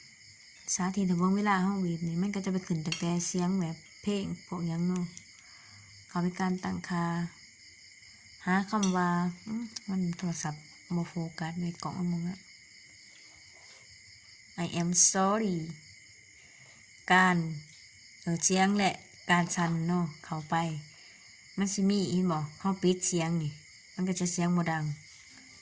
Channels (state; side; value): identical; both; correlation 1.00